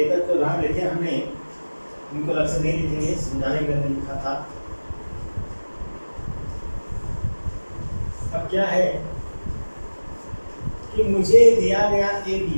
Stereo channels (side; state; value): both; inverted; correlation -1.00